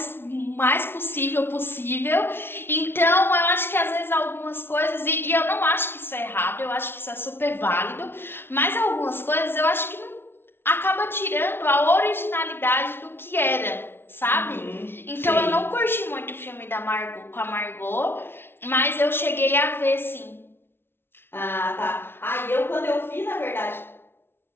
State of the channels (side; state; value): right; late; 0.11 ms